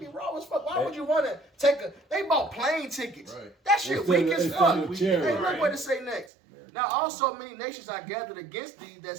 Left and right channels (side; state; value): left; drops out; at 6.3 s